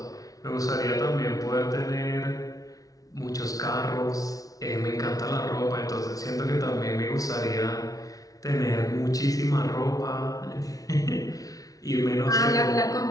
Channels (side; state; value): right; late; 0.18 ms